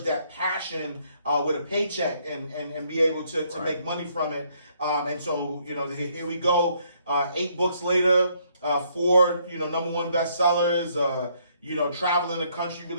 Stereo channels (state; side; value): inverted; both; correlation -0.69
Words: that passion with a paycheck and be able to make money from it. And so, here we go, 8 books later, 4, #1 bestsellers, traveling the country,